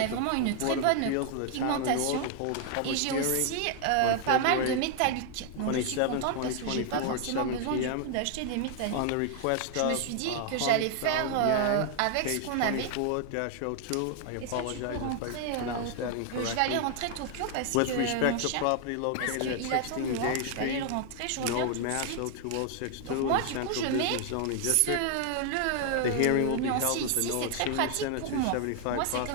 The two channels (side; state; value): both; different; correlation 0.00